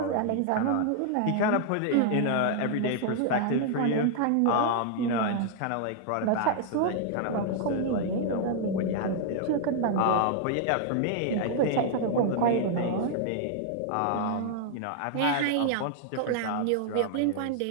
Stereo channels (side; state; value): both; different; correlation 0.00